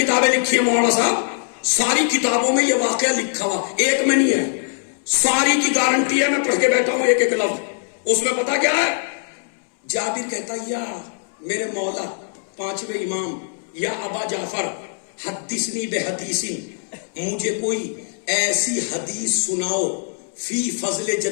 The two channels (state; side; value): silent; right; 65 dB below the other